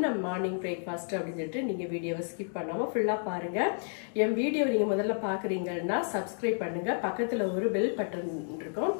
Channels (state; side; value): silent; right; digital silence